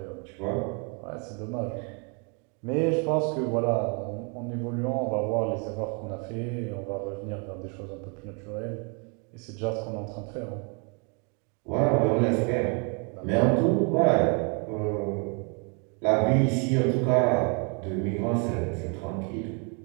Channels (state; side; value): quieter; left; 36.1 dB